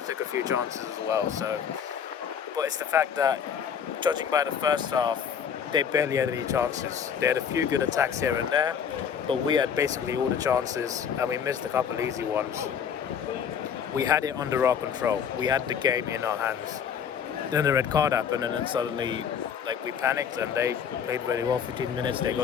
took a few chances as well. So, but it's the fact that, judging by the first half, they barely had any chances. They had a few good attacks here and there, but we had basically all the chances, and we missed a couple easy ones. We had it under our control. We had the game in our hands. Then the red card happened, and then suddenly, like, we panicked, and they played really well. 15 minutes, they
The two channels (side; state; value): right; quieter; 7.6 dB